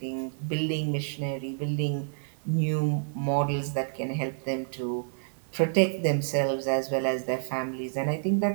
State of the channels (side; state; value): left; silent; digital silence